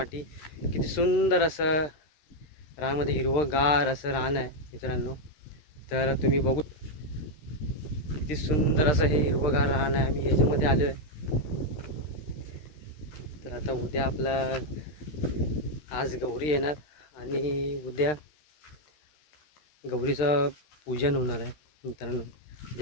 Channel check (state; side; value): late; right; 13 ms